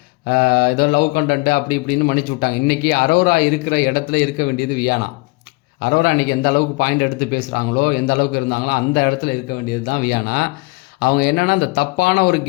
ஏதோ லவ் கண்டென்ட்டு அப்படி இப்படின்னு மன்னிச்சு விட்டாங்க. இன்றைக்கி அரோரா இருக்கிற இடத்துல இருக்க வேண்டியது வியானா. அரோரா இன்றைக்கி எந்த அளவுக்கு பாயிண்ட் எடுத்து பேசுகிறாங்களோ, எந்த அளவுக்கு இருந்தாங்களோ அந்த இடத்துல இருக்க வேண்டியது தான் வியானா. அவங்க என்னென்னா இந்த தப்பான ஒரு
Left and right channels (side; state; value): right; quieter; 26.2 dB